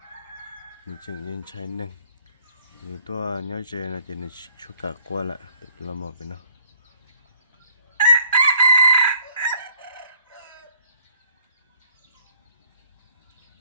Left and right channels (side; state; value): both; inverted; correlation -0.61